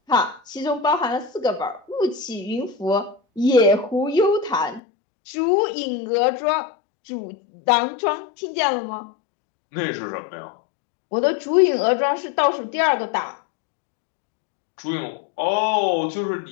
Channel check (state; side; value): drops out; right; at 4.8 s